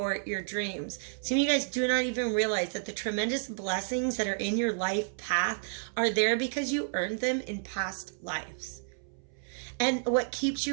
your dreams. Some of you guys do not even realize that the tremendous blessings that are in your life path are there because you earned them in past lives. And what keeps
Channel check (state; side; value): silent; left; 57 dB below the other